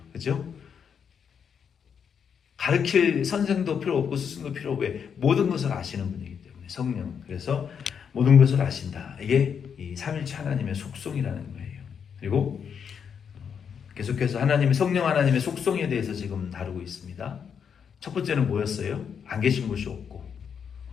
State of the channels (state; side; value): quieter; right; 7.2 dB